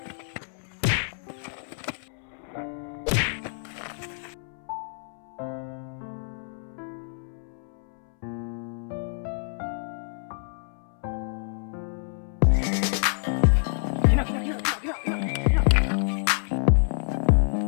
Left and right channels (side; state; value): right; silent; 60 dB below the other